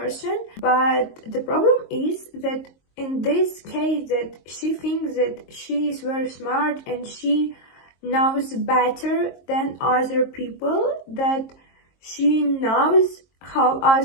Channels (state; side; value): late; right; 22 ms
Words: but the problem is that in this case that she thinks that she is very smart and she knows better than other people, that she knows how